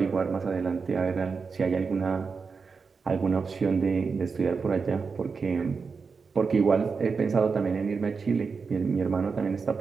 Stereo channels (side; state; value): left; quieter; 5.1 dB